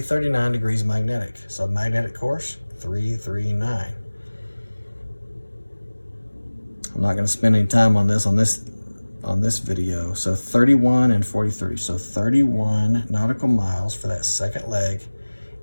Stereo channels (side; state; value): both; inverted; correlation -1.00